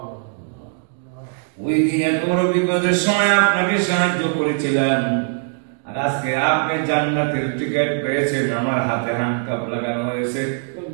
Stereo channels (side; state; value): left; silent; digital silence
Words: ওই দিন এত বড় বিপদের সময় আপনাকে সাহায্য করেছিলাম, আর আজকে আপনি জান্নাতের টিকিট পেয়েছেন, আমার হাতে হ্যান্ডকাপ লাগানো হয়েছে।